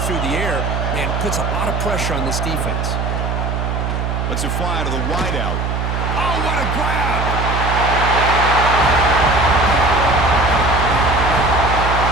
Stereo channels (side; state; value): right; noise; hum, 1 dB below the sound